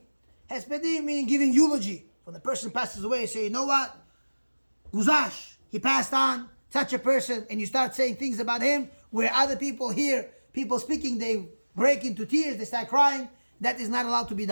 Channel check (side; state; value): both; inverted; correlation -1.00